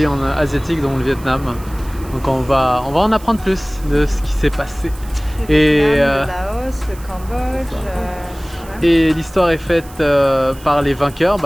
asiatiques dont le Vietnam. Donc on va en apprendre plus de ce qui s'est passé. Et le Laos, le Cambodge. Et l'histoire est faite par les vainqueurs,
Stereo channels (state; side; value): noise; right; hiss, 21 dB below the sound